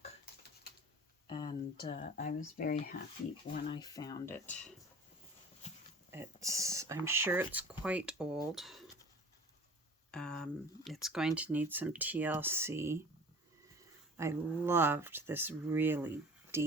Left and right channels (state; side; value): normal; both; correlation 0.43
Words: And I was very happy when I found it. I'm sure it's quite old. It's going to need some TLC. I loved this really